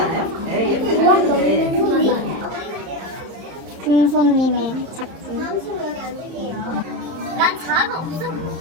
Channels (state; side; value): late; left; 30 ms